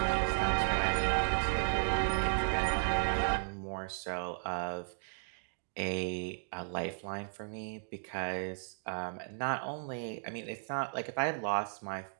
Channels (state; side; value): silent; left; digital silence